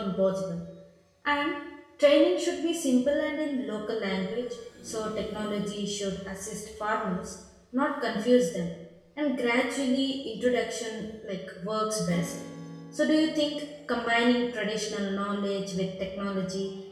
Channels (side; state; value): both; identical; correlation 1.00